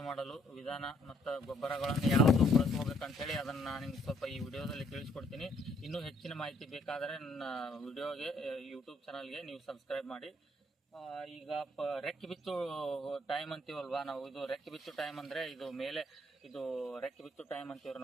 ಮಾಡಲು ವಿಧಾನ ಮತ್ತು ಗೊಬ್ಬರಗಳನ್ನು ಯಾವುದು ಬಳಸ್ಕೋಬೇಕಂತೇಳಿ ಅದನ್ನು ನಾನು ನಿಮ್ಗೆ ಸ್ವಲ್ಪ ಈ ವಿಡಿಯೋದಲ್ಲಿ ತಿಳಿಸ್ಕೊಡ್ತೀನಿ. ಇನ್ನೂ ಹೆಚ್ಚಿನ ಮಾಹಿತಿ ಬೇಕಾದರೆ ನನ್ನ ವಿಡಿಯೋಗೆ ಯೂಟ್ಯೂಬ್ ಚಾನಲ್ಗೆ ನೀವು ಸಬ್ಸ್ಕ್ರೈಬ್ ಮಾಡಿ. ಈಗ ರೆಕ್ಕೆ ಬಿತ್ತು ಟೈಮ್ ಅಂತೀವಲ್ವಾ ನಾವು, ಇದು ರೆಕ್ಕೆ ಬಿತ್ತು ಟೈಮ್ ಅಂದರೆ ಇದು ಮೇಲೆ ಇದು ರೆಕ್ಕೆ ಬಿತ್ತು ಟೈಮ್ ಅಂತೀವ್ರಿ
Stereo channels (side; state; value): both; normal; correlation 0.67